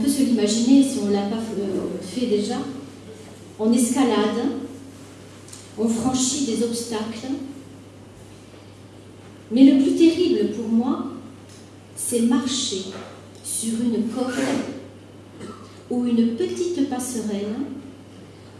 se l'imaginer si on ne l'a pas fait déjà. On escalade, on franchit des obstacles. Mais le plus terrible pour moi, c'est marcher sur une corde ou une petite passerelle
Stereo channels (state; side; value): identical; both; correlation 1.00